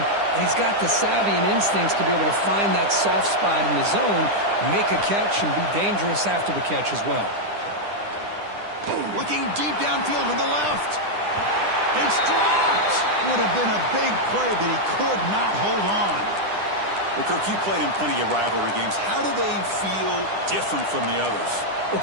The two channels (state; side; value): late; left; 10 ms